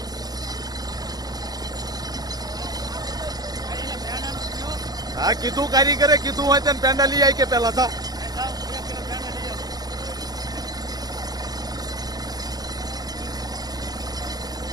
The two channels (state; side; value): late; left; 0.19 ms